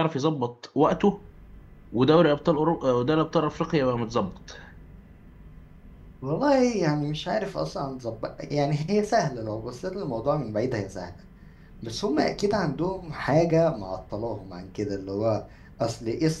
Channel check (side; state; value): both; identical; correlation 1.00